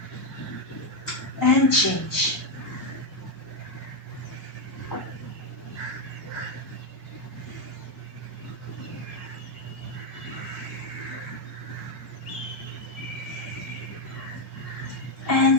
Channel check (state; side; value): normal; both; correlation 0.05